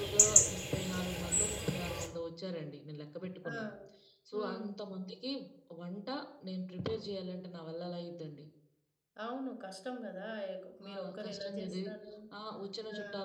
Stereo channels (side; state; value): both; identical; correlation 1.00